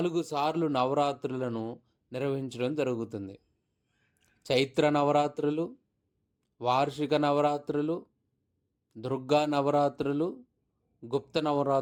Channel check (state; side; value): identical; both; correlation 1.00